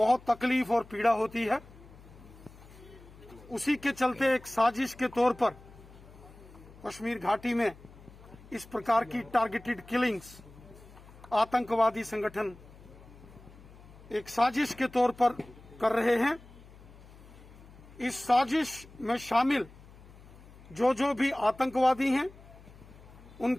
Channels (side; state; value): left; noise; hum, 21 dB below the sound